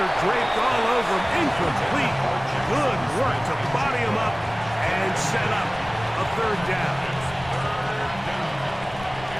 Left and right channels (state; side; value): noise; left; rumble, 17 dB below the sound